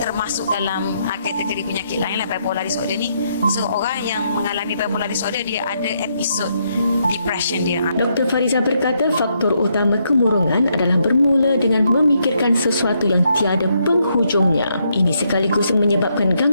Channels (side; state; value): both; inverted; correlation -0.77